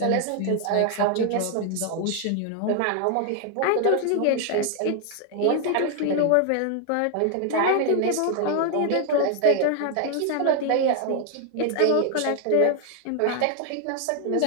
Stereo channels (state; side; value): different; both; correlation 0.00